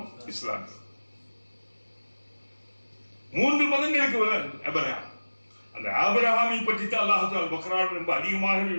இஸ்லாம். 3 மதங்களுக்கு ஆபிரகாம். அந்த ஆபிரகாமை பற்றி தான் அல்லாஹ் தஆலா பக்ரான் ரொம்ப அதிகமாக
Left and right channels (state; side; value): inverted; both; correlation -1.00